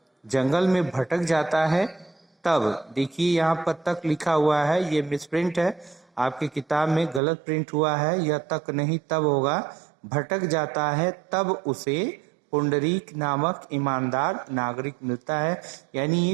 जंगल में भटक जाता है, तब देखिए यहाँ पर तक लिखा हुआ है, ये मिसप्रिंट है, आपकी किताब में गलत प्रिंट हुआ है, यह तक नहीं तब होगा। भटक जाता है तब उसे पुंडरीक नामक ईमानदार नागरिक मिलता है। यानी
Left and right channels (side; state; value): left; drops out; at 7.2 s